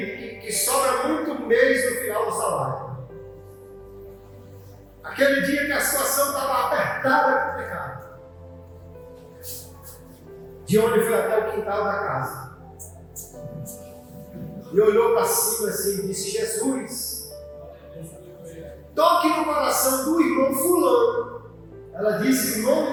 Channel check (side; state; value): both; identical; correlation 1.00